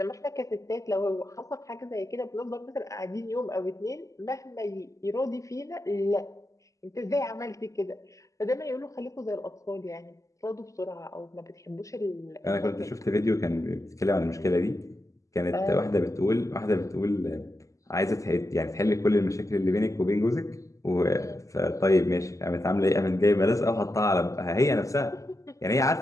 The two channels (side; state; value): right; late; 0.16 ms